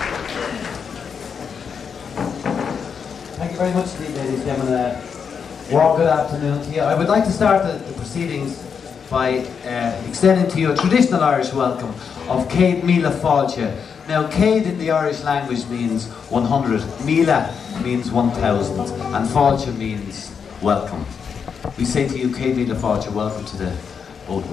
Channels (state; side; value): quieter; right; 6.5 dB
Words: Thank you very much indeed, ladies and gentlemen. Well, good afternoon to you. I would like to start the proceedings by extending to you a traditional Irish welcome of Céad Míle Fáilte. Now, Céad in the Irish language means 100, Míle means 1,000, and Fáilte means welcome. We say to you, Céad Míle Fáilte, welcome to the Old